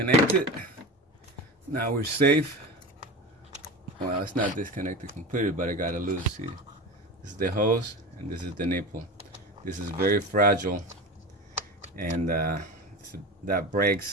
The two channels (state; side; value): normal; both; correlation 0.28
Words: Now we're safe. Well, it's not disconnected completely, but I got it loose. See, this is the hose and this is the nipple. This is very fragile, and that